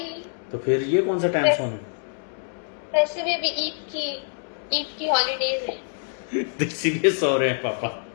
तो फिर ये कौन सा टाइम सोने? वैसे भी अभी ईद की हॉलीडेज है। इसीलिए सो रहे हैं पापा।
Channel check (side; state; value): right; silent; digital silence